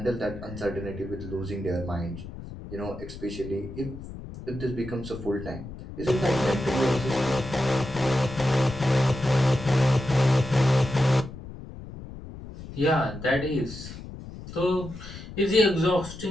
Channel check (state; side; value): noise; left; rumble, 13 dB below the sound